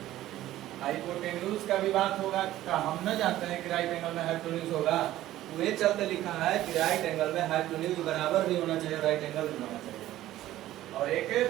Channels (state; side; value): quieter; left; 14.4 dB